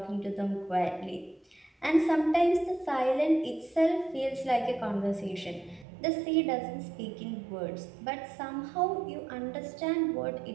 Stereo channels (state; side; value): drops out; left; at 5.9 s